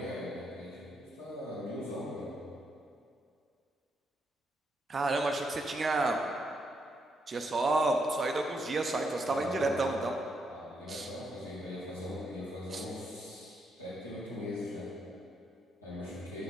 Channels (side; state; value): both; normal; correlation 0.78